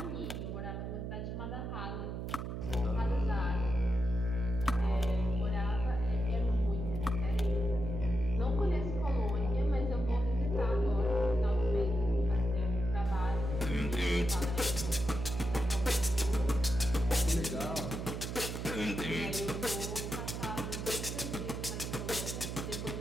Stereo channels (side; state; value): right; noise; hum, 5 dB below the sound